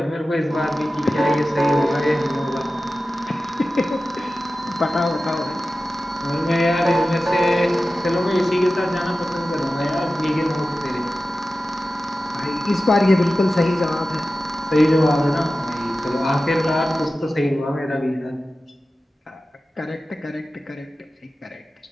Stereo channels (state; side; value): normal; both; correlation 0.94